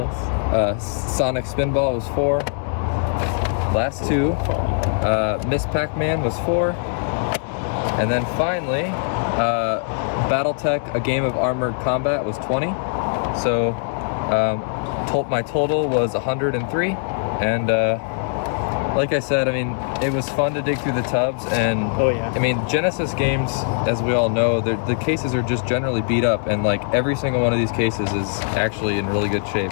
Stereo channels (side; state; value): right; silent; 65 dB below the other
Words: us. Sonic Spinball was 4. Last 2. Miss Pac-Man was 4. And then finally, Battletech, A Game of Armored Combat was 20. So my total was 103. And like I said, I mean, it was fun to dig through the tubs. And Oh, yeah. I mean, Genesis games, as we all know, the cases are just generally beat up. And like every single one of these cases is actually in really good shape.